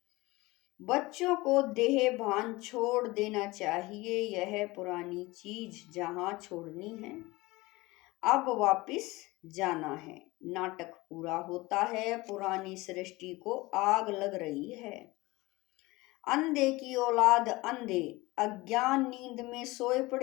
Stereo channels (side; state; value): right; quieter; 21.3 dB